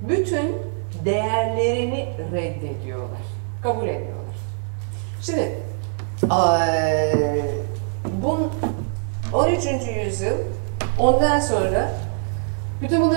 değerlerini reddediyorlar. Kabul etmiyorlar. Şimdi 13. yüzyıl ondan sonra Bütün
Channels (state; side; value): silent; left; 58 dB below the other